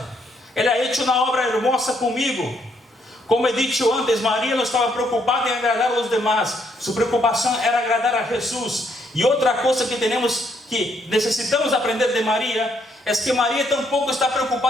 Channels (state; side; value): normal; both; correlation 0.72